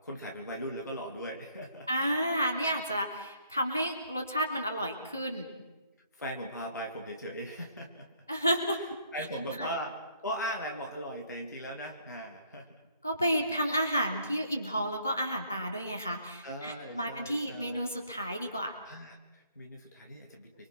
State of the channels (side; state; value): both; inverted; correlation -0.64